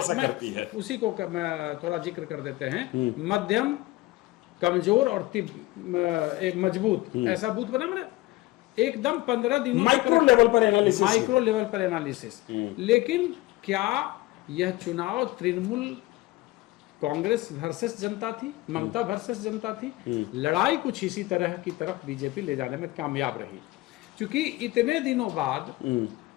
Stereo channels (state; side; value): quieter; right; 19.2 dB